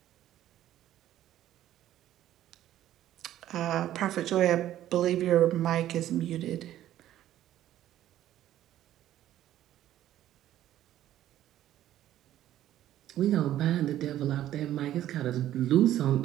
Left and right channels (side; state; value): left; quieter; 12.7 dB